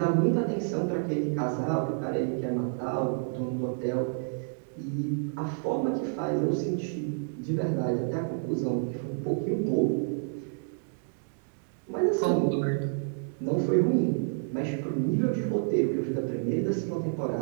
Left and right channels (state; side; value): silent; left; digital silence